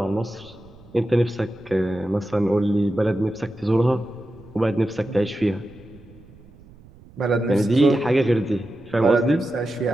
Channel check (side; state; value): right; noise; rumble, 23 dB below the sound